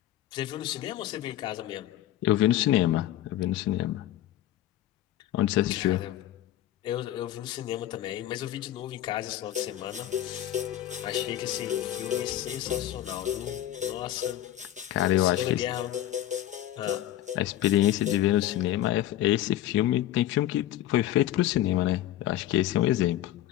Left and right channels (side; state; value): right; quieter; 13.0 dB